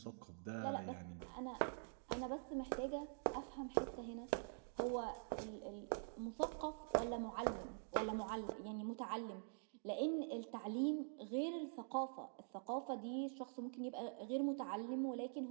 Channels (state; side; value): silent; left; digital silence